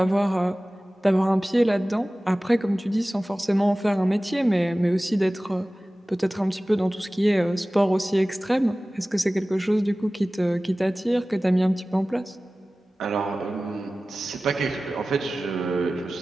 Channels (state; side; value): normal; both; correlation 0.97